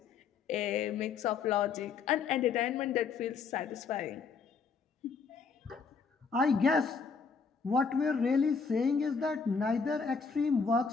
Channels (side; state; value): right; quieter; 5.4 dB